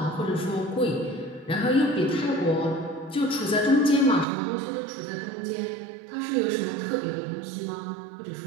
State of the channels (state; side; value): drops out; left; at 4.2 s